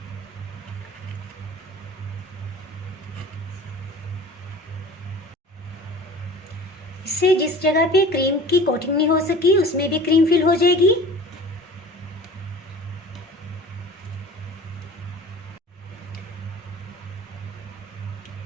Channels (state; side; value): normal; both; correlation 0.42